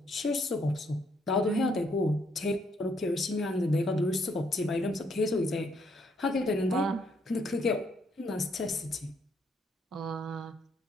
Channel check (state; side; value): normal; both; correlation 0.71